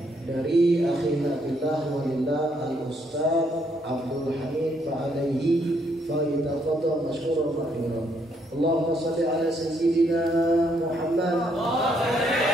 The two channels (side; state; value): both; normal; correlation 0.72